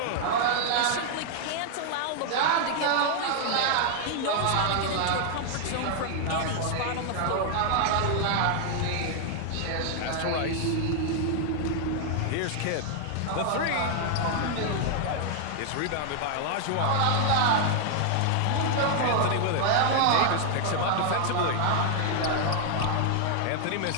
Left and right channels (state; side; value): different; both; correlation 0.00